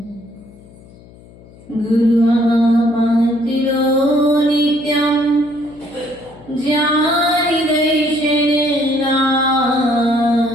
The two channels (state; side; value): noise; left; hum, 23 dB below the sound